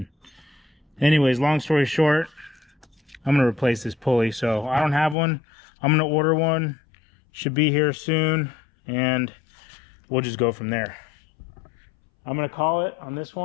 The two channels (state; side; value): drops out; right; at 5.2 s